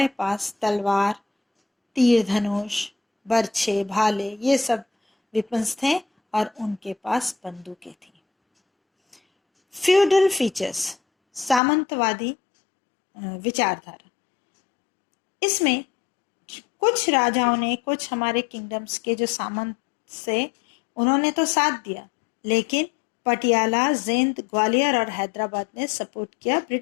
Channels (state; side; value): drops out; right; at 11.6 s